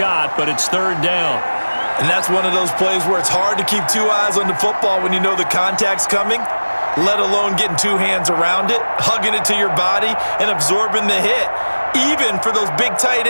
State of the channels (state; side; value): inverted; both; correlation -1.00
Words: but it's 3rd down. And that's one of those plays where it's hard to keep 2 eyes on the football when you know the contact's coming, let alone getting 2 hands around it, hugging it to your body, and absorbing the hit, even for those big tight